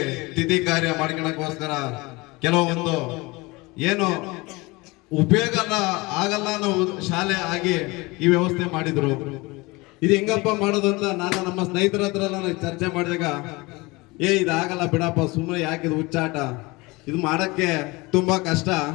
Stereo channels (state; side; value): quieter; right; 23.8 dB